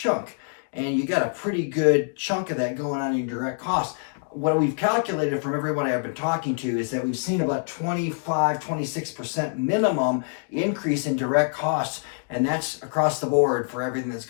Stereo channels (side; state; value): right; silent; 60 dB below the other